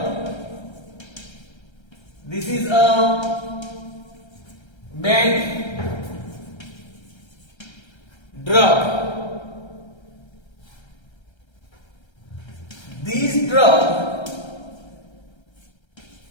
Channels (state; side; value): late; right; 1.3 ms